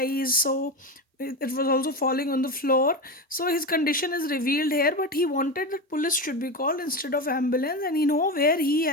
So it was also falling on the floor. So his condition is revealed here, but he wanted that police should be called instead of ambulance, and he know where he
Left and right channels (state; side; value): normal; both; correlation 0.19